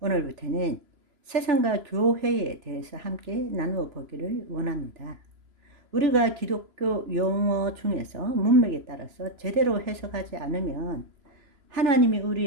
세상과 교회에 대해서 함께 나누어 보기를 원합니다. 우리가 기독교 용어 중에서 문맥에 따라서 제대로 해석하지 않으면 하나님이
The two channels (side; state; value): left; late; 3.0 ms